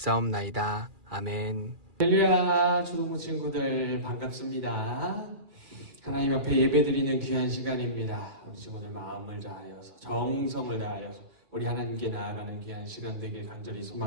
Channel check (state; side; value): late; left; 2.4 ms